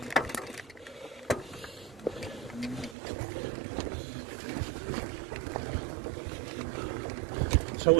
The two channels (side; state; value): left; drops out; at 3.0 s